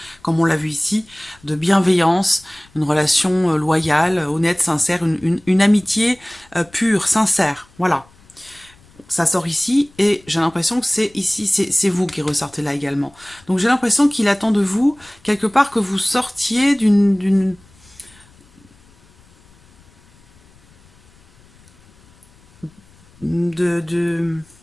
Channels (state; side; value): noise; left; rumble, 29 dB below the sound